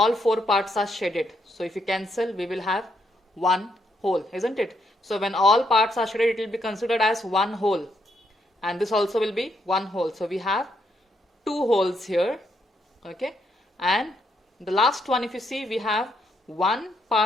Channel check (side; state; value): both; normal; correlation 0.76